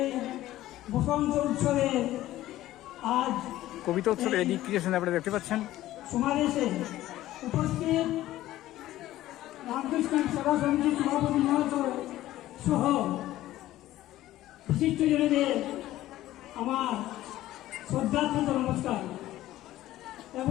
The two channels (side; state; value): right; quieter; 14.9 dB